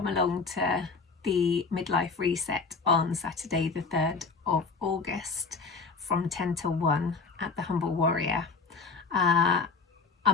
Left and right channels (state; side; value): quieter; right; 4.6 dB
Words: along to the midlife reset on Saturday the 3rd of August from 10 till 1 at the Humble Warrior.